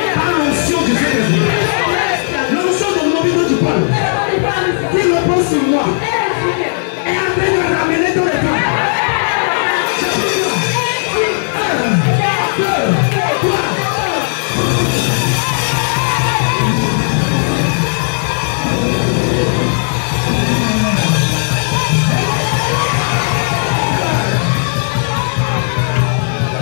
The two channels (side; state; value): right; silent; digital silence